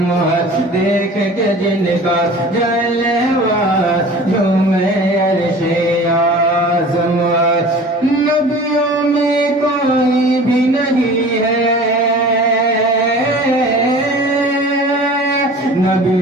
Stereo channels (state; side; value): normal; both; correlation 0.42